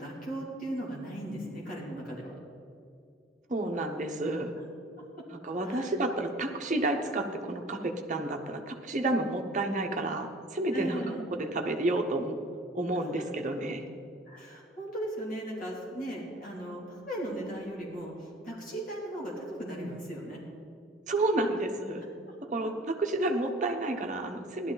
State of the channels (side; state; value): both; normal; correlation 0.48